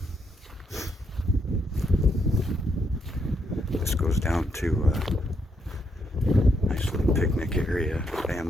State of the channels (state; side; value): normal; both; correlation 0.77